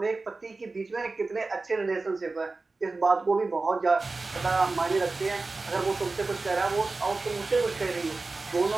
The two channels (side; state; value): left; quieter; 3.6 dB